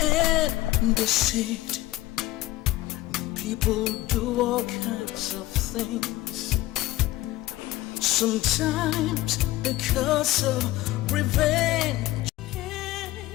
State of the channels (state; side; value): quieter; right; 17.2 dB